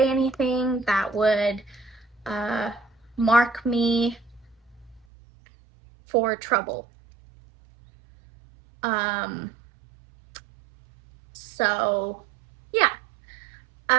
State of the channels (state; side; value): drops out; left; at 5.1 s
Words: anything that would uh mark me for trouble. um so yeah.